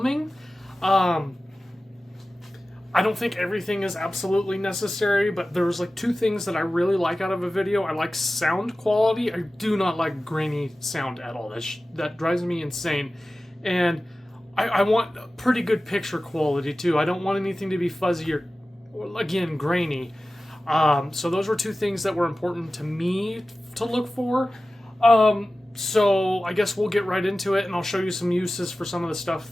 I don't think everything is absolutely necessary, but there's like two things that I really like out of a video. I like sound quality. I do not like grainy sound at all. That drives me insane. And I want pretty good picture quality too. I don't want anything to be fuzzy or again, grainy. So those were two things that were important to me to look for. So I guess we'll get right into it, and I'll show you some uses for some of the stuff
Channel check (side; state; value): both; normal; correlation 0.96